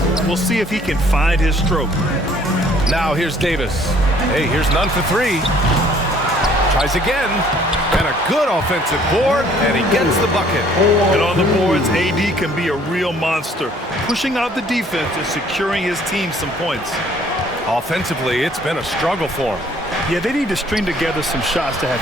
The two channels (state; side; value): normal; both; correlation 0.59